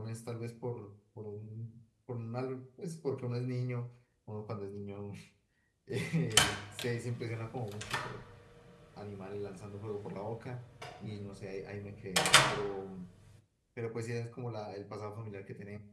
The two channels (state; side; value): identical; both; correlation 1.00